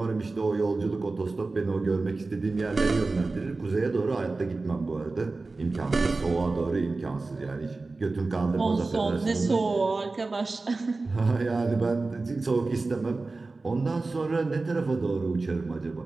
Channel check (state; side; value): quieter; left; 3.6 dB